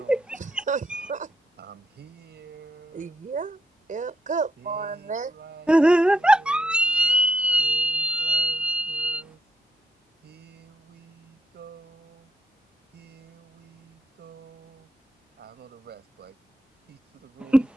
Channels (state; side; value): normal; both; correlation 0.77